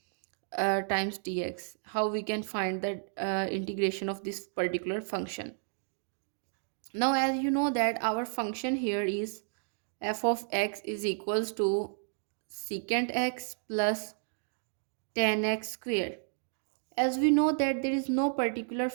times dx. How we can find the integration of this particular function. Now, as you know that our function here is f of x is equals to secant x plus tan x square. As we know that there is no particular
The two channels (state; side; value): silent; left; digital silence